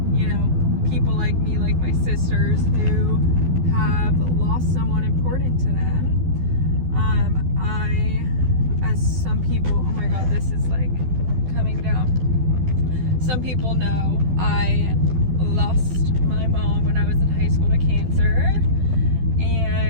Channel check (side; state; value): left; late; 12 ms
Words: you know, people like me, like my sisters who have lost someone important to them. As some people, oh my god, this is like coming down. Some people know I lost my mom when I was in high school to cancer,